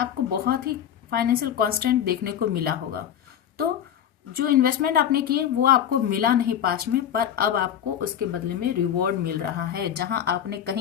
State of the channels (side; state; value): right; quieter; 9.7 dB